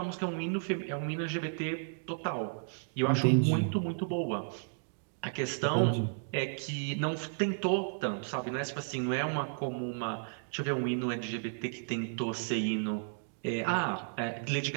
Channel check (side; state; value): left; silent; digital silence